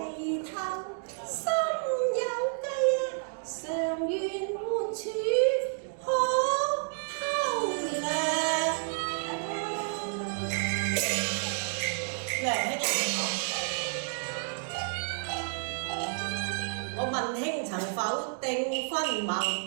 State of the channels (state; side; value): silent; left; digital silence